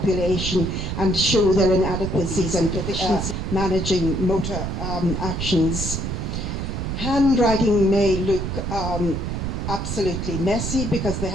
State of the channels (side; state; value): right; noise; rumble, 3 dB below the sound